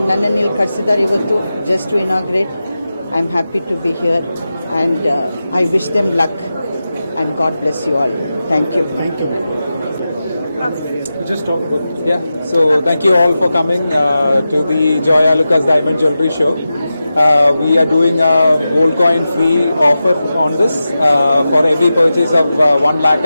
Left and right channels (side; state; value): both; inverted; correlation -0.92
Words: ನನ್ನನ್ನು ಇಲ್ಲಿ ಕಳಿಸಿದ್ದಾರೆ ಇವತ್ತು just to inaugurate. I am happy to be here and I wish them luck and God bless you all. Thank you. Thank you. Just talk about. Yeah, so thank you all for coming to the Joya Lucas Diamond Jewelry Show. We are doing a gold coin free offer on this for every purchase of 1 lakh